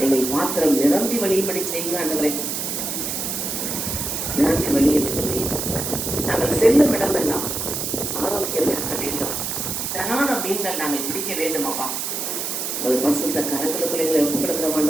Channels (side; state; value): right; noise; hiss, 3 dB below the sound